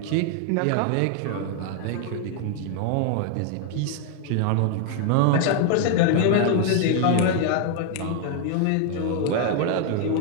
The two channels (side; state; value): both; different; correlation 0.00